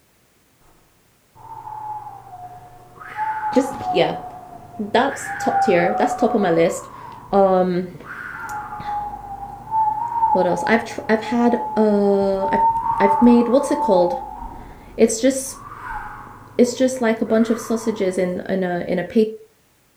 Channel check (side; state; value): both; identical; correlation 1.00